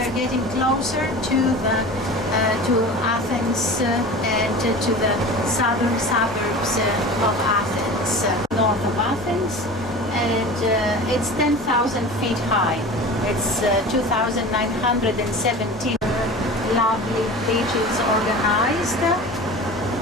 getting closer to Athens and to the southern suburbs of Athens, north of Athens, and it's 10,000 feet high. It's 2,917 lovely beaches organized,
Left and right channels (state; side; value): normal; both; correlation 0.35